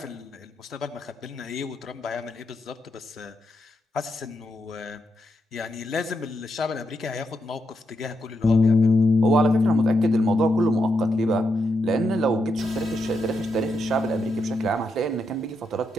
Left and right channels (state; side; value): normal; both; correlation 0.83